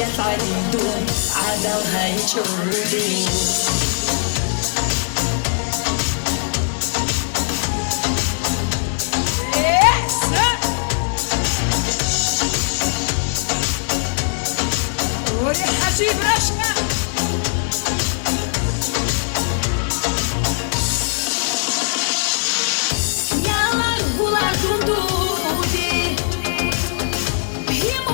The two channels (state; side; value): silent; right; digital silence